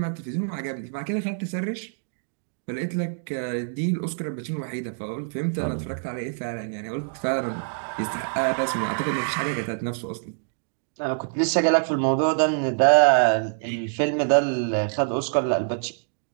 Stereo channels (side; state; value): left; silent; digital silence